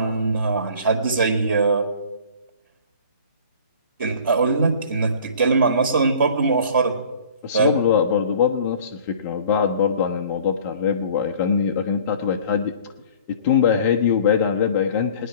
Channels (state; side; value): inverted; both; correlation -0.48